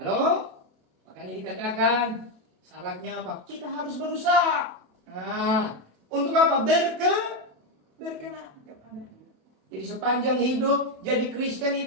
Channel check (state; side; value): late; left; 27 ms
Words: Makanya dikatakan syaratnya apa? Kita harus berusaha. Nah, untuk apa? Berkenan kepada. Jadi sepanjang hidup jadi Kristen